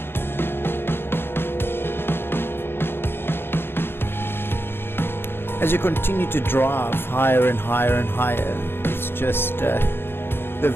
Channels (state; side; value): late; right; 0.11 ms